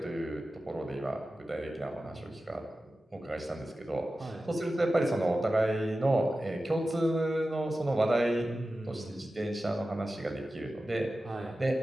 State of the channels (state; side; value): normal; both; correlation 0.94